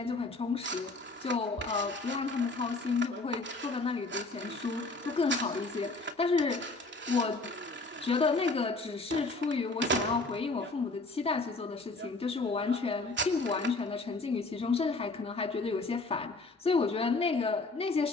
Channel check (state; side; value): quieter; right; 3.4 dB